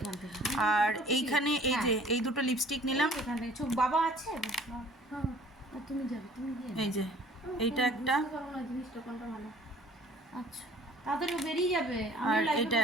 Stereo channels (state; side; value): normal; both; correlation 0.52